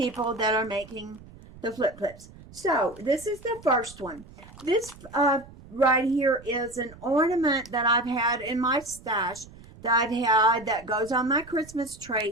that are making the flip clips. So this is the first one. This right here is an ornament that I've had in my stash that goes on my Christmas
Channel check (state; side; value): noise; right; rumble, 20 dB below the sound